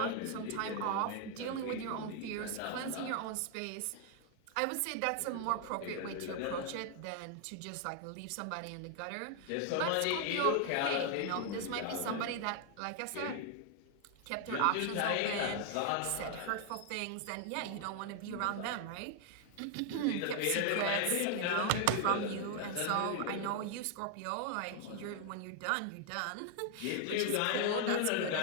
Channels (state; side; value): different; both; correlation 0.00